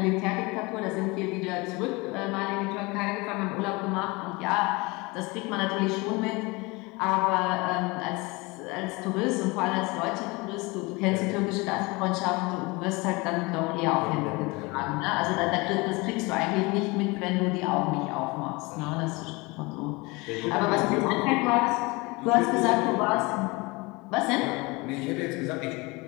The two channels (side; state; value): right; quieter; 25.1 dB